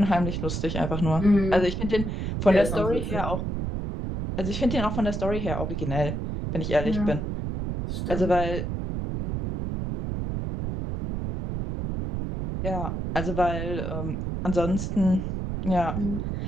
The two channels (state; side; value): noise; right; rumble, 3 dB below the sound